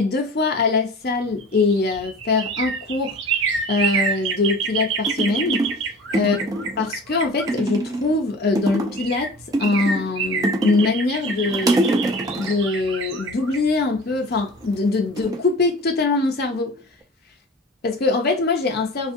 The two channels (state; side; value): normal; both; correlation 0.40